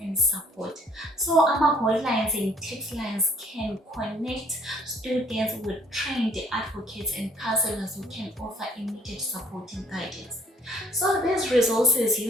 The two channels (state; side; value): normal; both; correlation 0.59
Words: and support. So hotlines and text lines can connect students with trained advocates and counselors who can offer immediate support and guidance. So these resources,